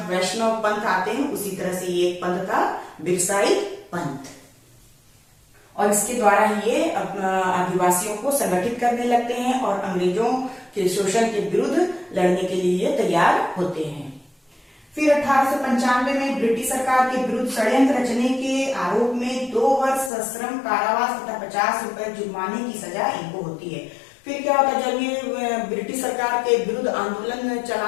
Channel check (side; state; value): right; drops out; at 20.1 s